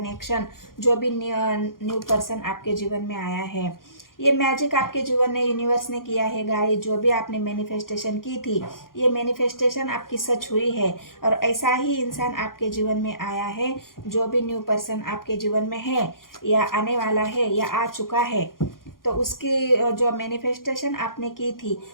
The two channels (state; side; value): late; right; 0.91 ms